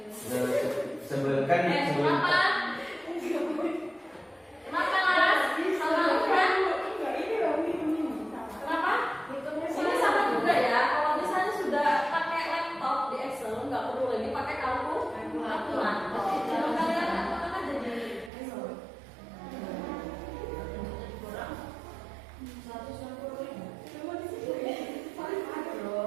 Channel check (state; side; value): drops out; left; at 18.3 s